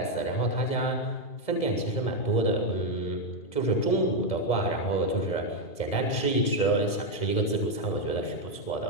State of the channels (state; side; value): late; right; 1.7 ms